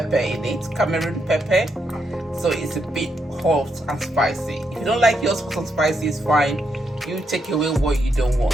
in it, Cameroon pepper, so it's a bit hot and spicy. If you don't like yours hot and spicy, it's fine. You take away what you don't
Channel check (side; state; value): both; normal; correlation 0.80